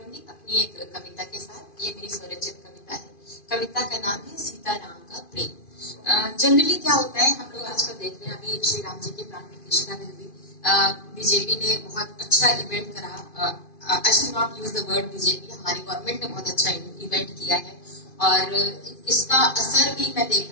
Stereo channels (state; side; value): late; right; 2.5 ms